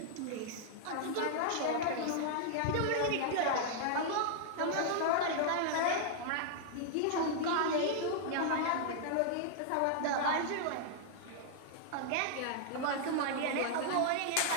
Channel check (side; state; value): both; different; correlation -0.01